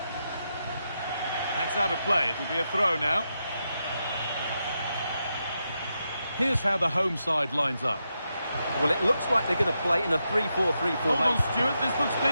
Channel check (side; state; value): both; inverted; correlation -0.85